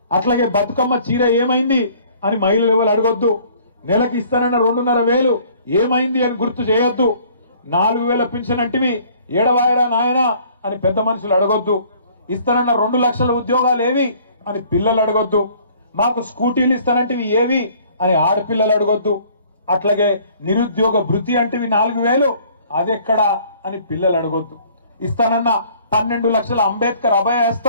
అట్లాగే బతుకమ్మ చీర ఏమైంది అని మహిళలు ఎవరు అడగొద్దు. నెలకి ఇస్తానన్న 2,500 ఏమైంది అని గుర్తు చేయొద్దు. 4,000 పింఛన్ అంటివి ఏడవాయరా నాయనా అని పెద్ద మనుషులు అడగొద్దు. ఇస్తానన్న 2 లక్షల ఉద్యోగాలు ఏవి అని పిల్లలు అడగొద్దు. మాకు స్కూటీలు ఇస్తానంటివి ఏవి అని ఆడపిల్లలు అడగొద్దు. అట్లాగే నిరుద్యోగ భృతి అంటే 4,000 అదెక్కడా అని పిల్లలు అడగొద్దు. ఇస్తానన్న 12 లక్షల అంబేద్కర్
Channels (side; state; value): both; inverted; correlation -0.56